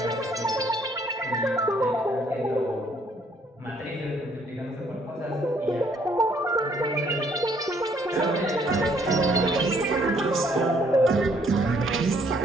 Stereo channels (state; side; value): normal; both; correlation 0.65